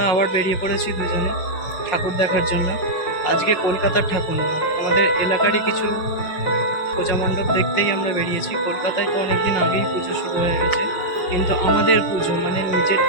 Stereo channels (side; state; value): right; late; 5.6 ms